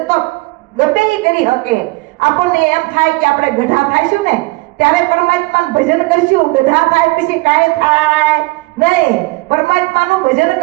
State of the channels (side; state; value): left; quieter; 23.5 dB